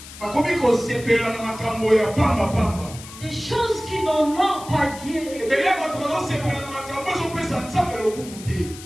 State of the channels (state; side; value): noise; left; hiss, 15 dB below the sound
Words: Des choses qui n'honorent pas Dieu.